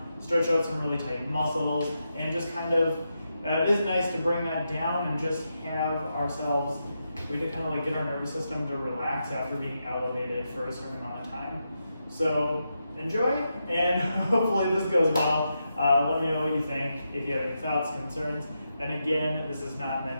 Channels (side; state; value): both; inverted; correlation -0.86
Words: stretch out some really tight muscles, and just kind of, it is nice to bring that down and just have ourselves, we to kind of like get our nervous system to relax after being elevated for a certain amount of time. So enjoy, and hopefully this goes well. Let me know what you think, if you have any thoughts, concerns. And again, this is not